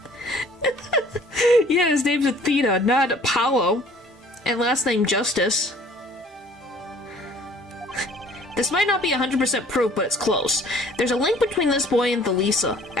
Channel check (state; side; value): normal; both; correlation 0.54